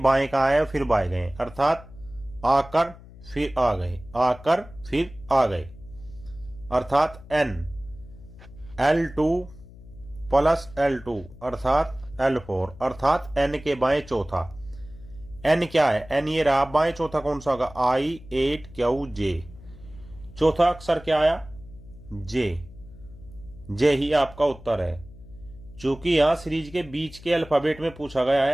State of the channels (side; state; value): left; noise; hum, 19 dB below the sound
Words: का आए फिर बाएं गए, अर्थात आकर फिर आ गए, आकर फिर आ गए, अर्थात एन L2 प्लस L2 अर्थात L4, अर्थात एन के बाएं चौथा। एन क्या है? एन ये रहा, बाएं चौथा कौन सा होगा? I8QJ। चौथा अक्षर क्या आया? जे। जे ही आपका उत्तर है। चूंकि यहां सीरीज के बीच के अल्फाबेट में पूछा गया